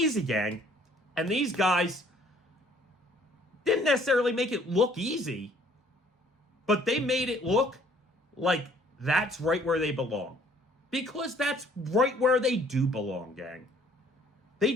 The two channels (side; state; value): both; normal; correlation 0.59